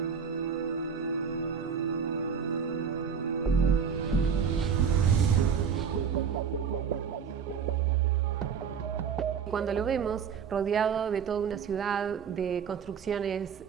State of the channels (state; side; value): quieter; left; 6.9 dB